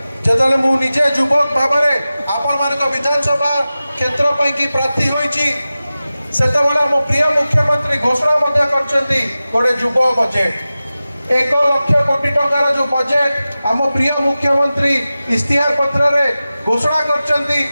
जेतले मु निजे युवक भाबरे आपण मानक विधानसभा क्षेत्र पई की प्रार्थी होईची सेतबेला मो प्रिय मुख्यमंत्री घोषणा मध्य करचंती गोटे युव बजेट 1 लाख कोटी टंकार जो बजेट आम प्रिय मुख्यमंत्री इस्तिहार पत्र रे घोषणा करचंती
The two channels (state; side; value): inverted; both; correlation -0.95